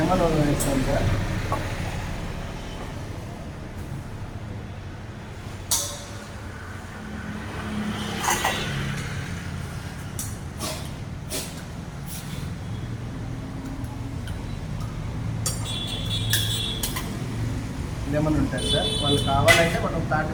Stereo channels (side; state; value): both; identical; correlation 1.00